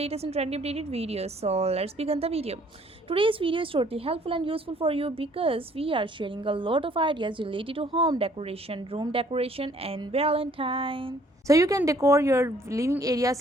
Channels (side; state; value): both; normal; correlation 0.60